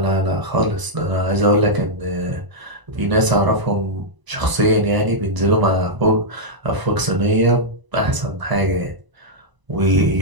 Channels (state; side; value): late; left; 1.0 ms